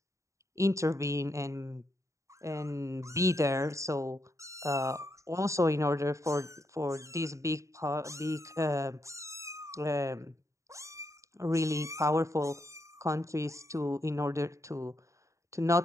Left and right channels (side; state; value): left; late; 0.15 ms